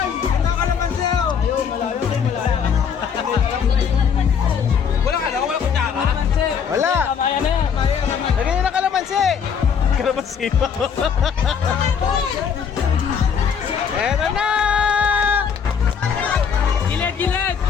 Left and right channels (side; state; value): right; quieter; 7.1 dB